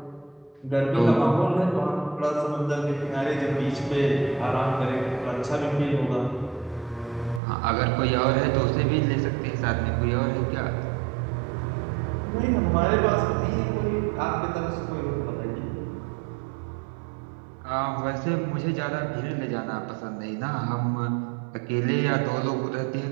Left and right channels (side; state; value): left; drops out; at 7.4 s